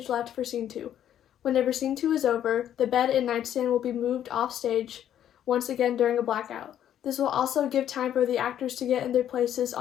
left for scene 2. Whenever scene 2 is over, the bed and nightstand will be moved off stage once again during a blackout. This will also give time for the actors to get in their places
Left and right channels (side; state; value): right; quieter; 10.5 dB